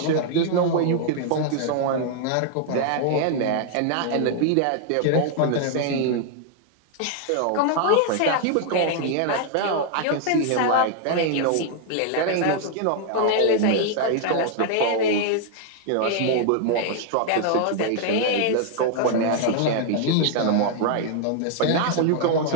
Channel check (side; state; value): both; different; correlation 0.00